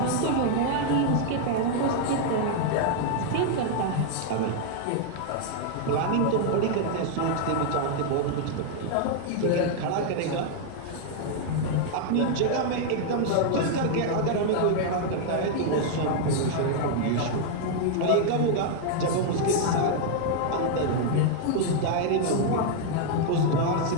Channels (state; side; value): different; both; correlation 0.00